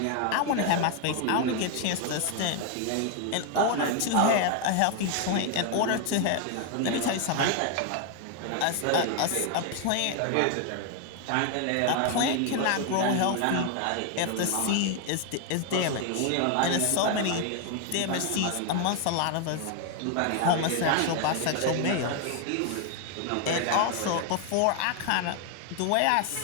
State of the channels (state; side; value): different; both; correlation 0.00